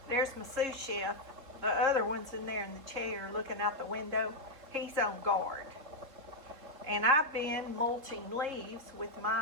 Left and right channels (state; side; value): late; left; 3.5 ms